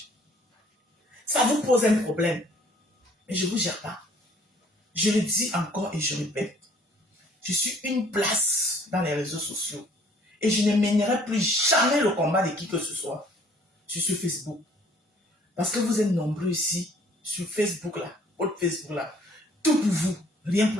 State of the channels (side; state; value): both; normal; correlation 0.58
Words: Ça vous pose un problème. Mais je ne vous gère pas. Je le dis encore et je répète. Je suis une place dans les réseaux sociaux. Et je ne mènerai plus jamais le combat de qui que ce soit sur Facebook. Parce que vous êtes nombreux ici, sur Facebook là, votre Facebook là. Tout pour vous, rien pour